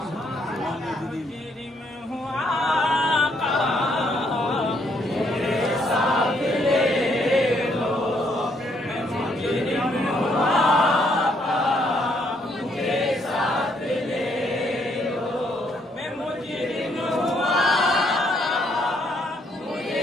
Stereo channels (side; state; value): both; normal; correlation 0.71